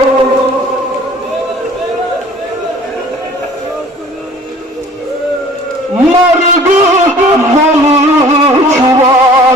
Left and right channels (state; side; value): normal; both; correlation 0.49